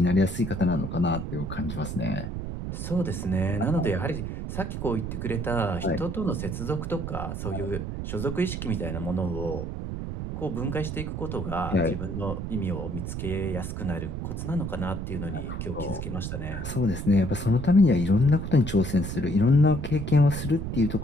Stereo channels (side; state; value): right; noise; rumble, 5 dB below the sound